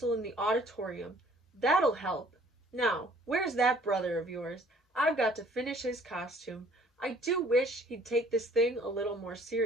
in the auditorium. That'll help. Now, where's that brother of yours? I've got to finish his costume. I do wish he'd take this thing a little more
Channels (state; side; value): normal; both; correlation 0.57